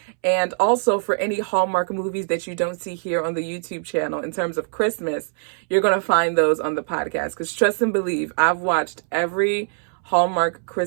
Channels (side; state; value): left; silent; 64 dB below the other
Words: And also for any Hallmark movies that you don't see here on the YouTube channel in terms of Christmas, you're going to find those on the podcast. Because trust and believe, I've watched every Hallmark